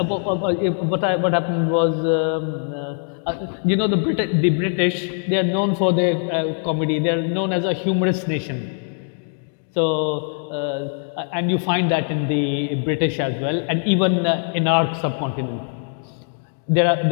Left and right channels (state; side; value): silent; right; 58 dB below the other